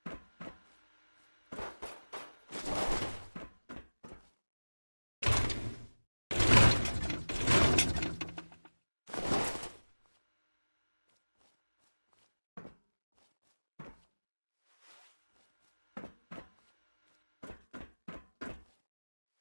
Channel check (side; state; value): both; inverted; correlation -1.00